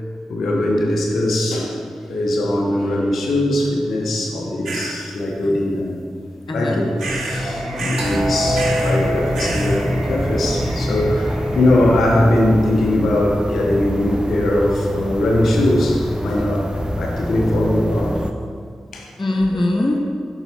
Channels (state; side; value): normal; both; correlation 0.90